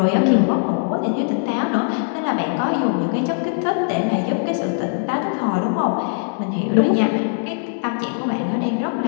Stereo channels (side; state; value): right; silent; digital silence